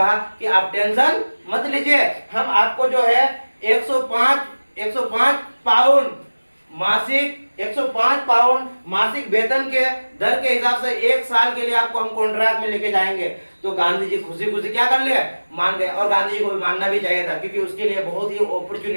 कि आप टेंशन मत लीजिए, हम आपको जो है 105 पाउंड मासिक 105 पाउंड मासिक वेतन के दर के हिसाब से 1 साल के लिए आपको हम कॉन्ट्रैक्ट में लेके जाएंगे। तो गांधी जी खुशी खुशी क्या कर लिया, मान गए। और गांधी जी को भी मानना भी चाहिए था, क्योंकि उसके लिए बहुत ही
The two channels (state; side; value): inverted; both; correlation -1.00